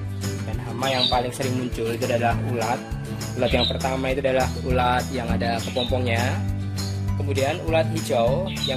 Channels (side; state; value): both; identical; correlation 1.00